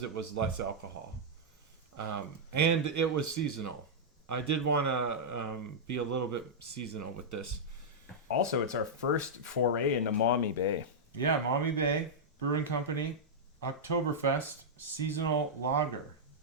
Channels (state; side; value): normal; both; correlation -0.08